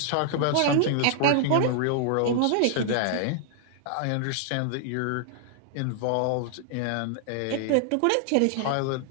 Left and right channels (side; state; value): both; different; correlation -0.01